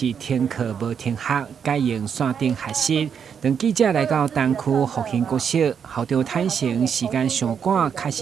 停课无停学，改用线顶学习。当记者来到东区复兴国小，校长坦承时间上赶，确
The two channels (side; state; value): left; quieter; 7.3 dB